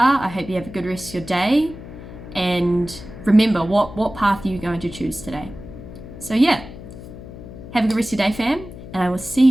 I hope you have a good rest of your day. And remember, what path are you going to choose today? So yeah, have a good rest of your day, fam. And I will see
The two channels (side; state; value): left; noise; hum, 14 dB below the sound